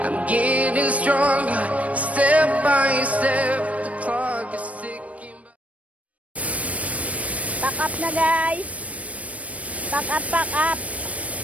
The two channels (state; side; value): late; left; 0.066 ms